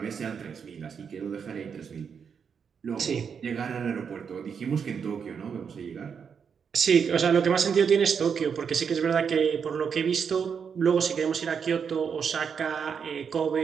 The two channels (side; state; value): left; quieter; 6.7 dB